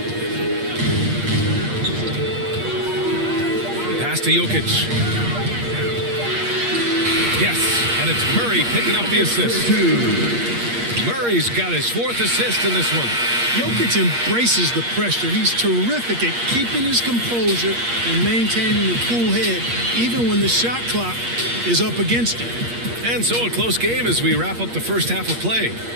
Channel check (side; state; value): left; late; 8.5 ms